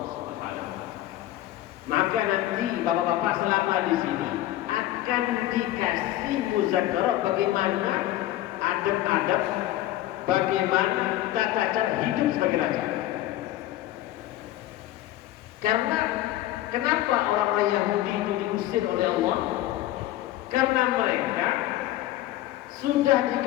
Subhanahu wa taala. Maka nanti bapak-bapak selama di sini akan dikasih muzakarah bagaimana adab-adab, bagaimana tata cara hidup sebagai raja. Karena kenapa orang-orang Yahudi itu diusir oleh Allah? Karena mereka sudah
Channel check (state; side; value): quieter; right; 14.6 dB